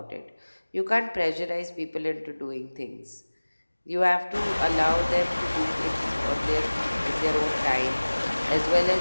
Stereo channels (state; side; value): inverted; both; correlation -1.00